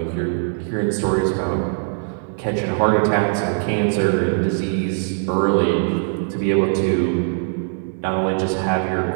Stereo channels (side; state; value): left; silent; 61 dB below the other